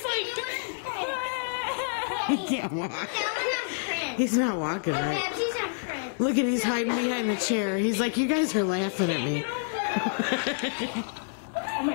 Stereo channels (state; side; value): silent; right; digital silence